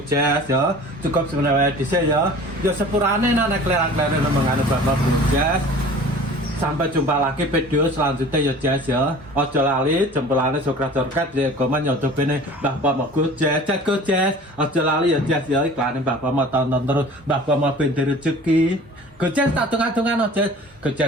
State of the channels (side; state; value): both; normal; correlation 0.43